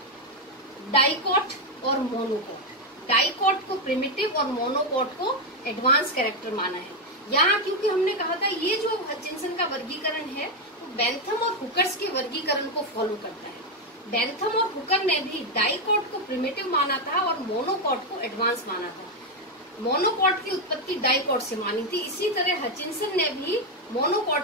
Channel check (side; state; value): both; normal; correlation 0.05